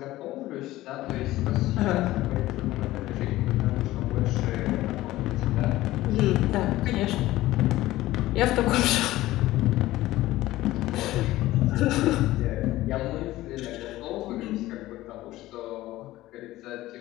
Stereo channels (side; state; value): right; quieter; 16.5 dB